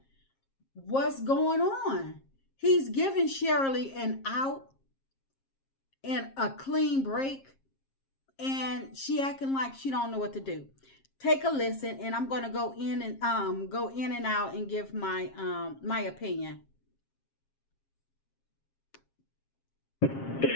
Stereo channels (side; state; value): right; late; 7.4 ms